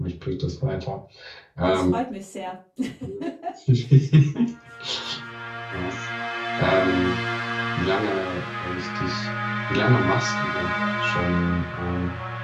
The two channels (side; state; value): both; identical; correlation 1.00